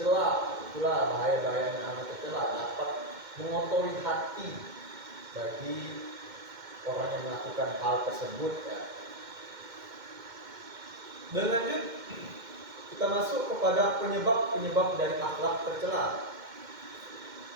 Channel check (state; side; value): late; left; 2.1 ms